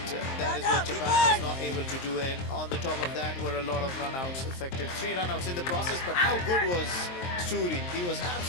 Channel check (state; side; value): late; right; 23 ms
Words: that is what Japan was not able to do. And on the top of that were a lot of run-outs affected. 3 run-outs in the process, but how good was Suri? He was